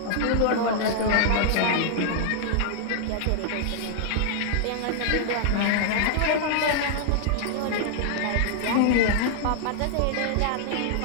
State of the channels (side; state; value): both; different; correlation -0.01